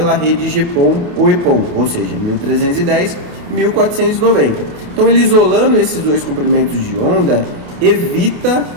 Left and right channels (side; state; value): left; late; 29 ms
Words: rede GPON ou EPON, ou seja, 1310 e 1490. Então, ele isolando esses dois comprimentos de onda, evita